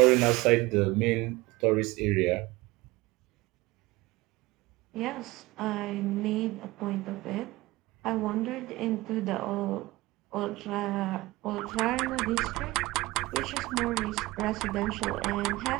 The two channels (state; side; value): quieter; left; 20.2 dB